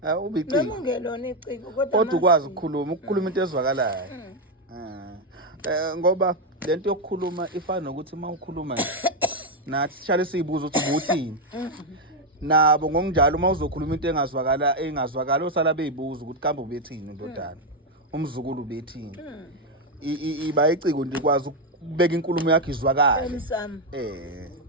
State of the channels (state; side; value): normal; both; correlation 0.04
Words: ubiciko noma ungelona iciko kodwa ukwazi ukukhuluma into ezwakalayo ngoba lento yokukhuluma ifana nokuthi mawukhuluma nathi sihlale siyibuza ukuthi ubuthini nabo ngokunjalo mawuzokhuluma into engazwakala osala beyibuza ukuthi kambe ubethini ndodana umzukulu ubethini iba iciko nje kwazi ukubeka inkulumo yakhe izwakala emsamo